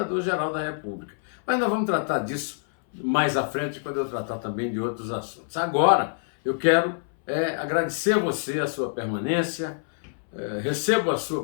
da República. Mas nós vamos tratar disso mais à frente, quando eu tratar também de outros assuntos. Agora, eu quero agradecer a você a sua permanência. Recebo a sua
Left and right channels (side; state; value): right; silent; 61 dB below the other